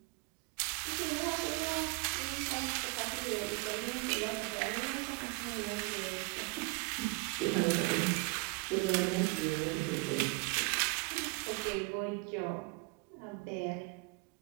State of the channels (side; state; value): left; quieter; 27.7 dB